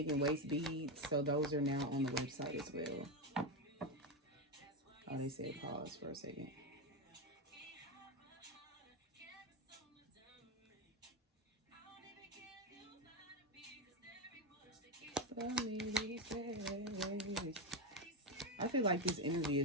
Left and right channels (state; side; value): normal; both; correlation 0.10